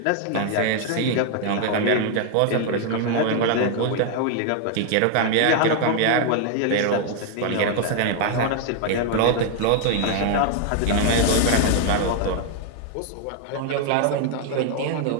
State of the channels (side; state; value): both; different; correlation 0.00